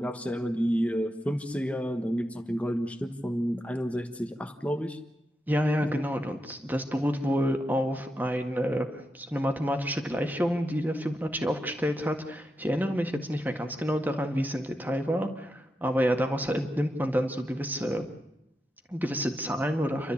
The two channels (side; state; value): both; normal; correlation 0.86